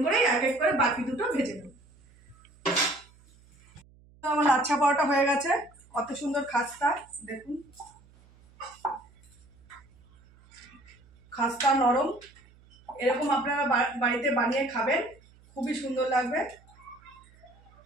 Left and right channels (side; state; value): right; noise; hum, 27 dB below the sound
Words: করে এক এক করে বাকি দুটো ভেজে নেব। আমার লাচ্ছা পরোটা হয়ে গেছে, কত সুন্দর খাস্তা। দেখুন খাস্তা নরম, এরকম আপনারা বাড়িতে বানিয়ে খাবেন, খুবই সুন্দর লাগবে।